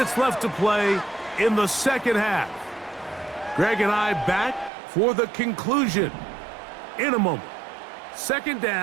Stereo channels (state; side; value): drops out; left; at 4.7 s